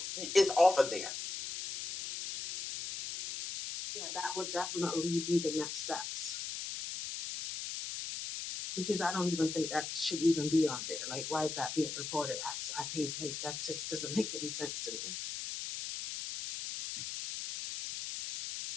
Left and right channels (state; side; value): noise; left; hiss, 5 dB below the sound